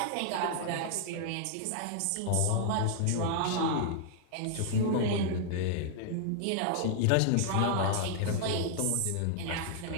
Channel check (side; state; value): both; different; correlation -0.01